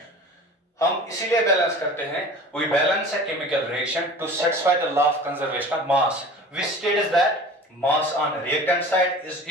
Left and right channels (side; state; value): both; normal; correlation 0.40